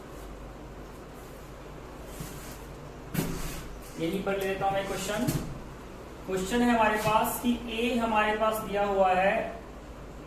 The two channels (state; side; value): identical; both; correlation 1.00